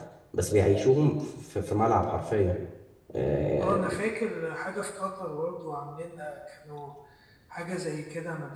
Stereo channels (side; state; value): both; identical; correlation 1.00